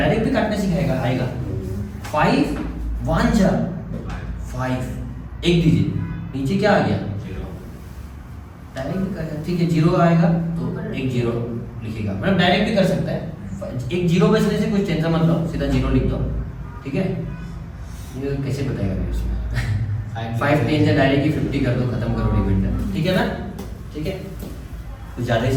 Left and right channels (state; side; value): identical; both; correlation 1.00